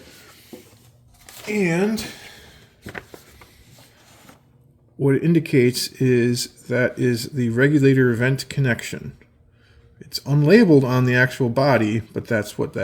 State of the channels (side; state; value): both; identical; correlation 1.00